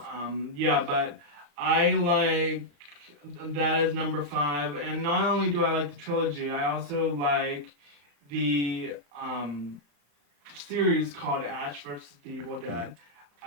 yeah, but I like that is number 5, and not only do I like the trilogy, I also like the series called Ash vs. the Evil Dead.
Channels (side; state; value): left; late; 35 ms